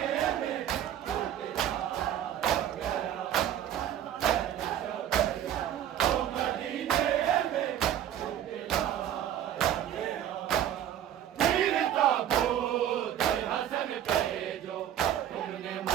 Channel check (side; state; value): left; quieter; 10.8 dB